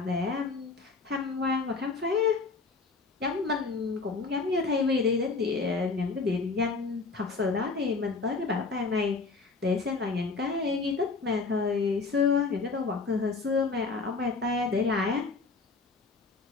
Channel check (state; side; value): quieter; right; 4.3 dB